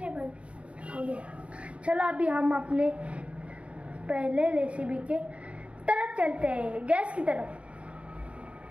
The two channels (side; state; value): left; late; 0.062 ms